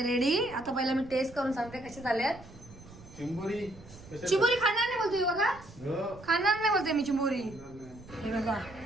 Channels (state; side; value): noise; right; rumble, 19 dB below the sound